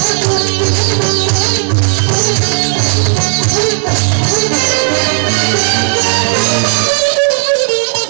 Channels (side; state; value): left; silent; 59 dB below the other